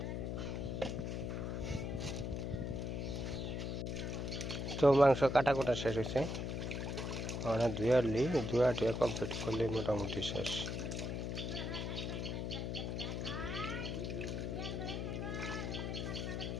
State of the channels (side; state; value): left; noise; hum, 2 dB below the sound